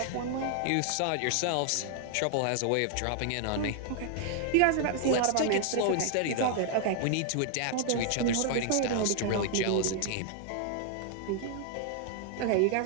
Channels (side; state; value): both; different; correlation 0.00